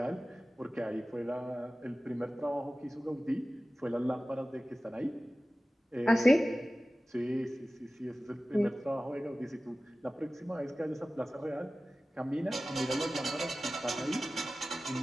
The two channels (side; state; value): both; normal; correlation 0.96